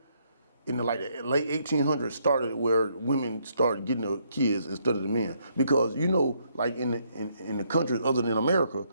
in the late 1800s, started where women started getting the kids instead of the men. Because like in the countries other than America,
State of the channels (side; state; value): both; inverted; correlation -0.72